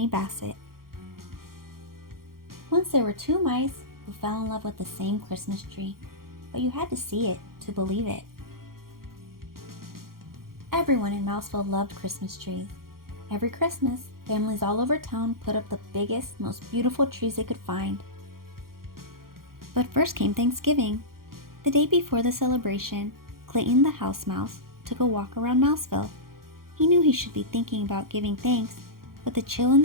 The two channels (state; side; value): late; left; 0.92 ms